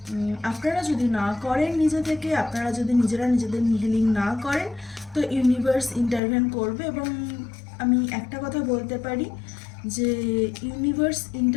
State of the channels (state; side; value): drops out; right; at 6.2 s